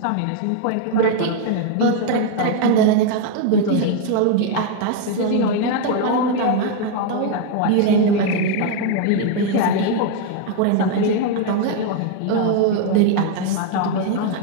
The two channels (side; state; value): both; different; correlation 0.00